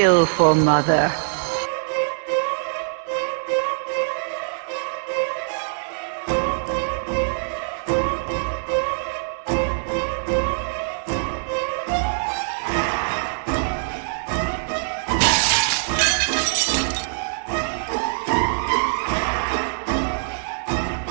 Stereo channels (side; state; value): left; silent; 63 dB below the other